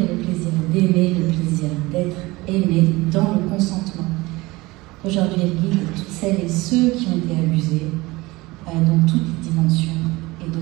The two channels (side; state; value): left; quieter; 21.4 dB